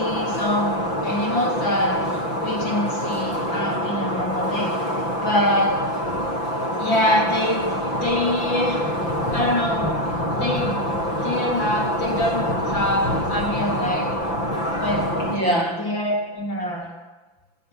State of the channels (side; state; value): right; late; 5.9 ms